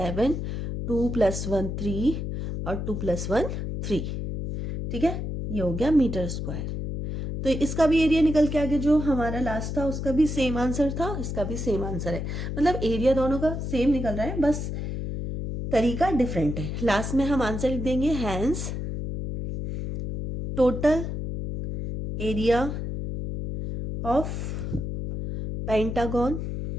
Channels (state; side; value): noise; left; hum, 4 dB below the sound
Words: 2 + 1 3 और 2 + 1 3, ठीक है। ये हो गया मीटर स्क्वायर। तो इसका भी एरिया निकल के आ गया, जो हमारा लास्ट था उसका भी सेम आंसर था, इसका भी सेम आंसर है, मतलब एरिया दोनों का सेम निकल रहा है, बस तरीका डिफरेंट है। लास्ट में हम आंसर लिख देंगे, hence total area of pentagon